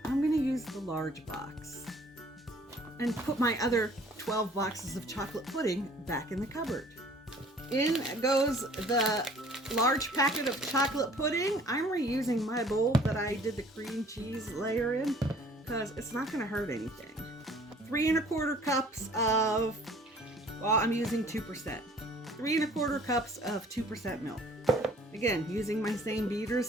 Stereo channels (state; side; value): normal; both; correlation 0.54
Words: I'm gonna use the large box and put my other 12 boxes of chocolate pudding back in the cupboard. In goes the large packet of chocolate pudding. I'm reusing my bowl that I did the cream cheese layer in because it's not gonna hurt anything. 3 1/4 cups of, well, I'm using 2%. 3 1/4 cups of 2% milk. Again, using my same